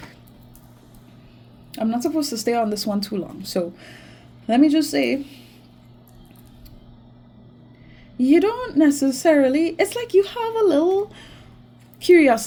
I'm not supposed to stay on this one too long. So let me just say, you don't necessarily, it's like you have a little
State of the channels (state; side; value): identical; both; correlation 1.00